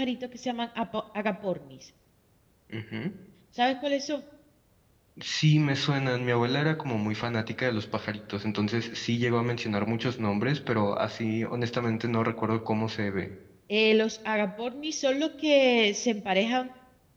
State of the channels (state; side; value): identical; both; correlation 1.00